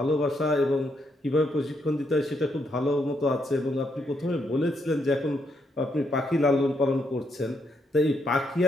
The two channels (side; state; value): both; normal; correlation 0.77